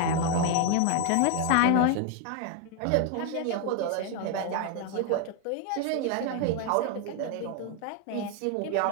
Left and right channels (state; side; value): different; both; correlation 0.01